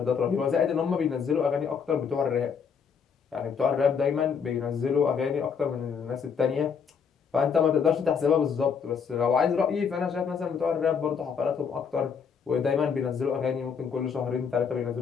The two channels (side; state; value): right; quieter; 6.5 dB